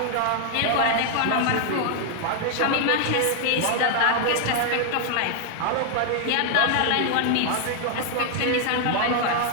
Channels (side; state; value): both; different; correlation 0.00